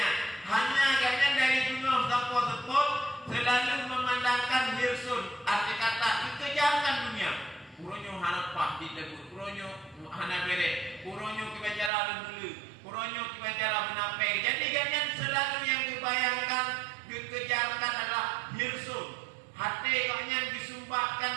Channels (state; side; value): drops out; left; at 11.9 s